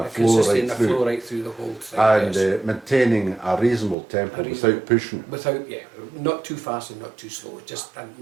A flow consistency right and a through. flow right through the whole thing. And yes. maintaining a reasonable tempo without pushing. Without, not too fast and not too slow. Just in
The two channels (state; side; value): drops out; left; at 4.0 s